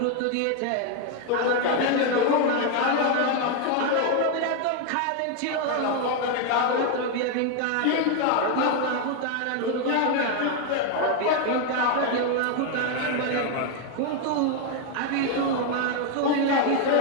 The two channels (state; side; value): different; both; correlation 0.01